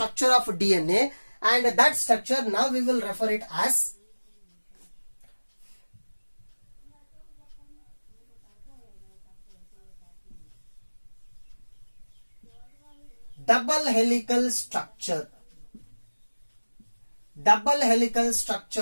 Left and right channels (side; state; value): both; inverted; correlation -1.00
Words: of DNA, and that structure now we will refer it as double helical structure. Double helical